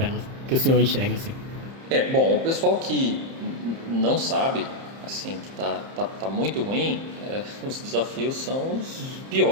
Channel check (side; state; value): left; late; 30 ms